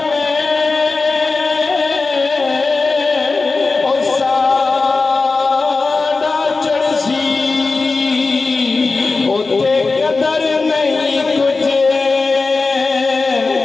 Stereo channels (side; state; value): right; quieter; 3.9 dB